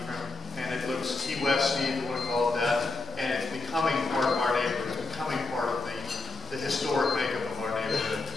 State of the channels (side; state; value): right; quieter; 3.3 dB